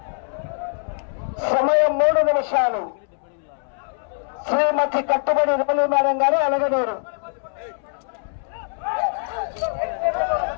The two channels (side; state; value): right; silent; 63 dB below the other